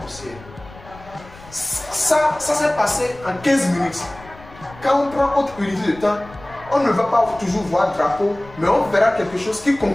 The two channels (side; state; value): left; noise; rumble, 20 dB below the sound